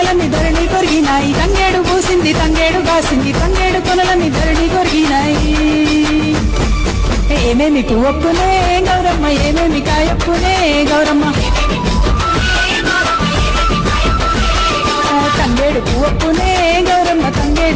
ధరణి కొరిగినాయి. తంగేడు పూసింది తంగేడు గాసింది, తంగేడు కొనలన్నీ ధరణి కొరిగినాయి. ఏమేమి పువ్వప్పునే గౌరమ్మ, ఏమేమి కాయప్పునే గౌరమ్మ. తంగేడు పువ్వప్పునే గౌరమ్మ,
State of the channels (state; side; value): identical; both; correlation 1.00